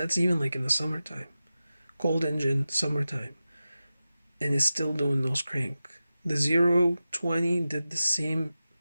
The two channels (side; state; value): both; inverted; correlation -0.94